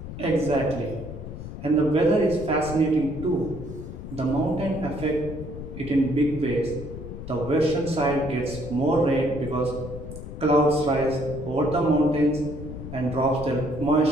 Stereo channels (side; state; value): left; noise; rumble, 10 dB below the sound